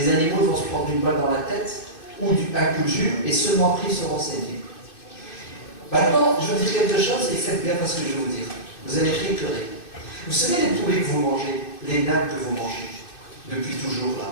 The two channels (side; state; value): right; late; 2.6 ms